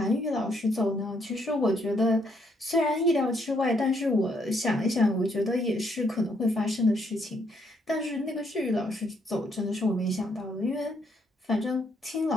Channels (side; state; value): both; normal; correlation 0.72